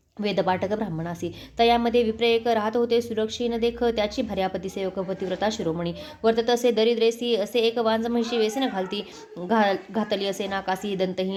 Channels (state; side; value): identical; both; correlation 1.00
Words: वेदपाठक ब्राह्मणासी. तयामध्ये विप्र एक राहत होते सुरक्षीन देख त्याची भार्यापती सेवक पतिव्रता शिरोमणी. वर्तत असे दरिद्रेसी असे एक वांज म्हशी वेसन घातली असे नाकासी